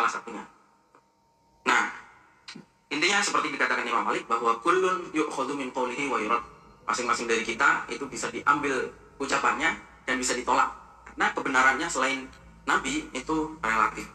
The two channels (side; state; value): both; identical; correlation 1.00